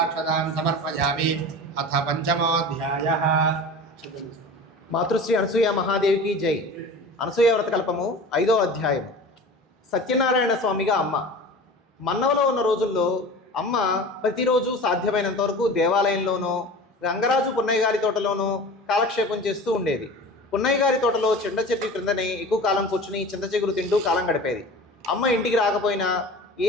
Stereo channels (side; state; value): both; normal; correlation 0.36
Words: समर्पयामि अथ पंचमोऽध्यायः మాతృశ్రీ అనసూయ మహాదేవికి జై. అనసూయ వ్రతకల్పము 5వ అధ్యాయము. సత్యనారాయణ స్వామిగా అమ్మ. మన్నవలో ఉన్న రోజుల్లో అమ్మ ప్రతిరోజు సాధ్యమైనంత వరకు దేవాలయంలోనో గంగరాజు పున్నయ్య గారి తోటలోనో కాలక్షేపం చేస్తూ ఉండేది. పున్నయ్య గారి తోటలో చింత చెట్టు క్రిందనే ఎక్కువ కాలం కూర్చుని చింత చిగురు తింటూ కాలం గడిపేది. అమ్మ ఇంటికి రాకపోయినా